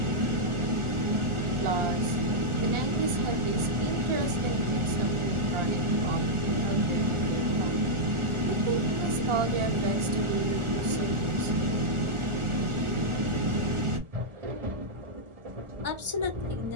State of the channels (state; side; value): late; left; 1.4 ms